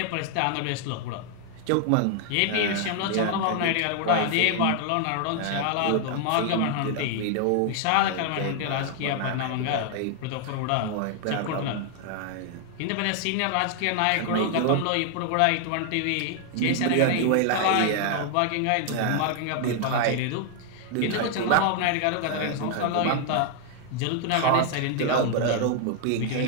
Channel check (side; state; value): both; different; correlation 0.00